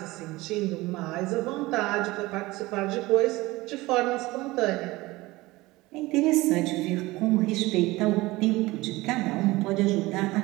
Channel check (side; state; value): left; quieter; 20.2 dB